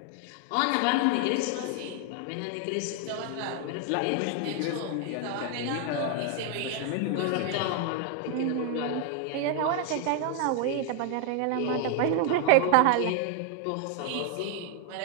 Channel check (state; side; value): different; both; correlation 0.00